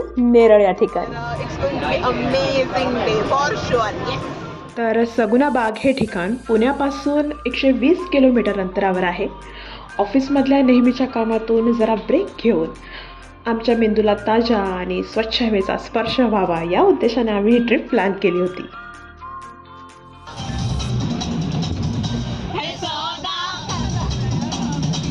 नेरळ या ठिकाणी. तर सगुना बाग हे ठिकाण पुण्यापासून 120 किलोमीटर अंतरावर आहे. ऑफिसमधल्या नेहमीच्या कामातून जरा ब्रेक घेऊन आमच्या मेंदूला ताज्या आणि स्वच्छ हवेचा स्पर्श व्हावा या उद्देशाने आम्ही ही ट्रिप प्लॅन केली होती.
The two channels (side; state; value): both; identical; correlation 1.00